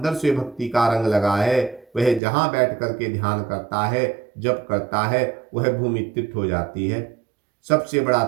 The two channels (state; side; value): drops out; left; at 2.2 s